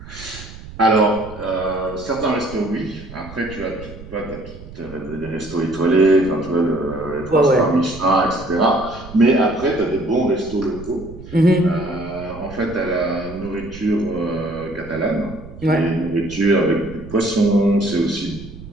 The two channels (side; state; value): right; noise; rumble, 16 dB below the sound